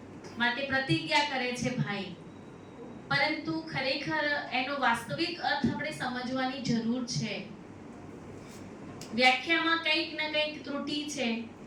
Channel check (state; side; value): identical; both; correlation 1.00